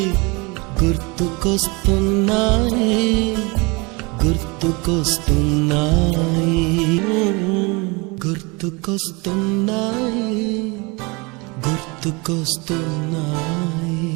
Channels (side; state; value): left; quieter; 27.3 dB